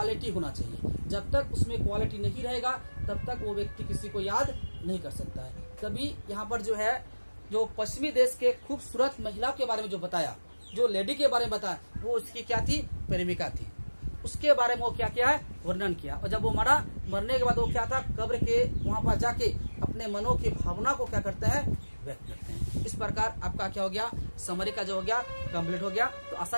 होना चाहिए। जब तक उसमें क्वालिटी नहीं रहेगा तब तक वो व्यक्ति किसी को याद नहीं कर सकता है। कभी यहाँ पर जो है, जो पश्चिमी देश के खूबसूरत महिला के बारे में जो बताया, जो लेडी के बारे में बताया, वो उसकी क्या थी, प्रेमिका थी। उसके बारे में वो क्या किया है, वर्णन किया। और जब वो मरने के बाद वो क्या था, कब्र के वहां पर जाके अपने मनों की भावना को क्या करते हैं, व्यक्त करते हैं। इस प्रकार आपका क्या हो गया, समरी का जो हो गया कंप्लीट हो गया। तो आशा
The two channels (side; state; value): both; inverted; correlation -1.00